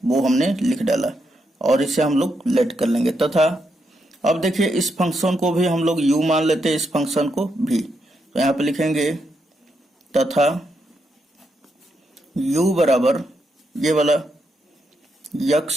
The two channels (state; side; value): normal; both; correlation 0.81